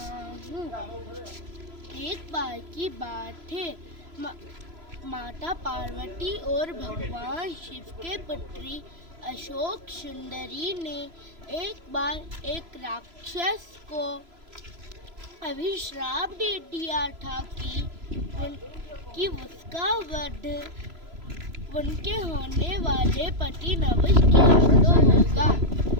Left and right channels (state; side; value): late; left; 3.0 ms